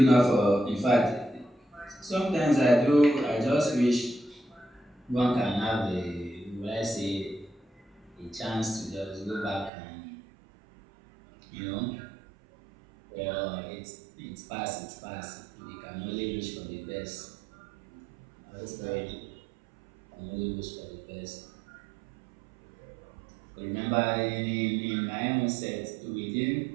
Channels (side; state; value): left; drops out; at 9.7 s